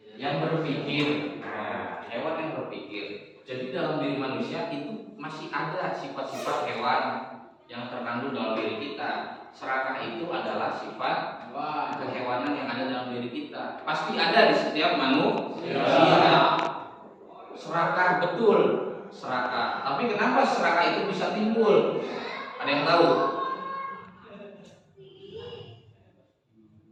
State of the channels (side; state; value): both; identical; correlation 1.00